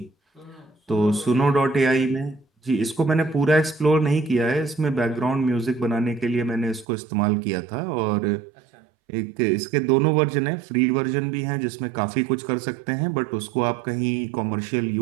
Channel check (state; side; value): drops out; left; at 6.9 s